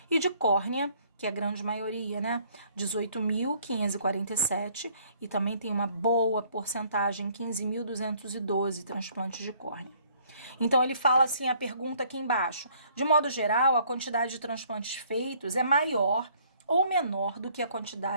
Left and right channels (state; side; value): inverted; both; correlation -0.61